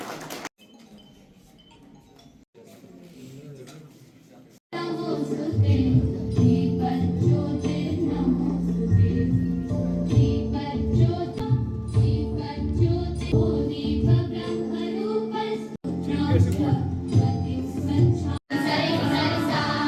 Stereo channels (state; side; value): identical; both; correlation 1.00